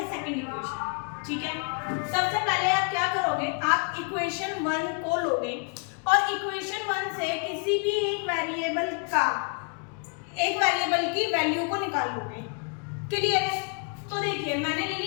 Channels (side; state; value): right; quieter; 36.8 dB